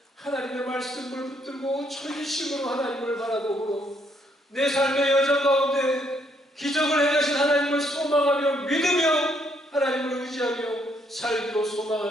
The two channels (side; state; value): both; normal; correlation 0.71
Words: 하나님의 말씀을 붙들고 전심으로 하나님을 바라보므로 내 삶의 여정 가운데 기적을 행하신 하나님을 소망하며 믿으며 하나님을 의지하며 살기로